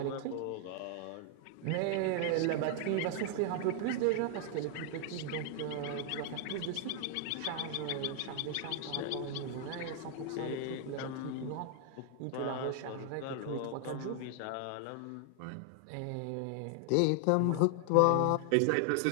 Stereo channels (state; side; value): different; both; correlation 0.00